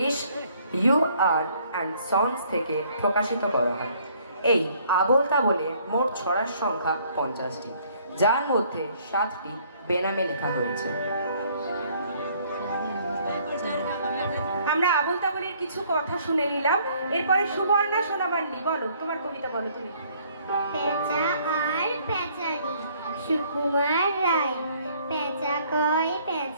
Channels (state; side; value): inverted; both; correlation -0.62